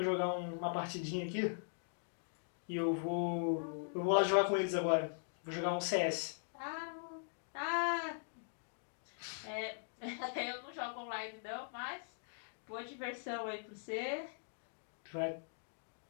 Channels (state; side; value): silent; right; digital silence